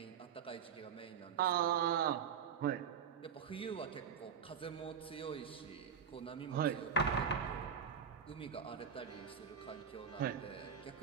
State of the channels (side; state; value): left; quieter; 7.4 dB